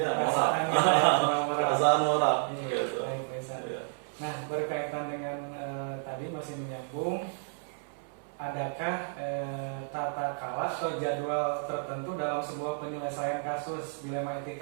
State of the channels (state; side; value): silent; left; 57 dB below the other